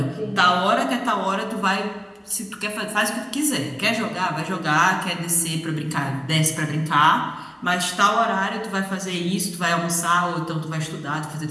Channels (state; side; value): identical; both; correlation 1.00